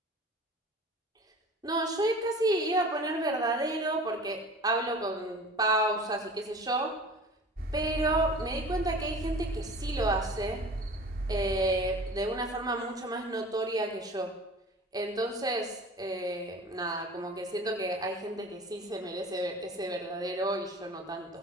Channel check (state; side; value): normal; both; correlation 0.41